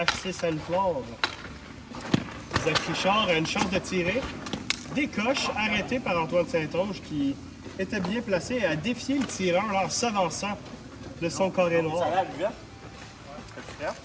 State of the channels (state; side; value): identical; both; correlation 1.00